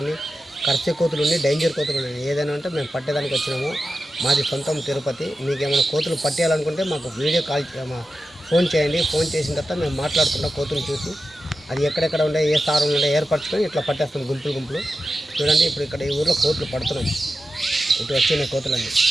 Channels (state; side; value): normal; both; correlation 0.92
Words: ఉన్నాయి, కర్సే కోతులు ఉన్నాయి, డేంజర్ కోతులు ఉన్నాయి. ఏదైనా ఉంటే మేము పట్టేదానికి వచ్చినాము. మాది సొంతం తిరుపతి. మీకు ఏమైనా కోతులు పట్టేయాలనుకుంటే మాకు వీడియో కాల్ ఫోన్ చేయండి. ఫోన్ చేసిన తర్వాత మేము మాట్లాడుకుంటాం. కోతులు చూసి అది ఎక్కడెక్కడ ఉండే ఏ స్థానంలో ఉండే ఏర్పరచుకొని ఇట్లా పట్టేస్తాం గుంపులు. చూడండి ఇప్పుడు ఇక్కడ ఈ ఊర్లో కోతులు పడుతున్నాం. ఇటు వచ్చినాయి కోతులన్నీ.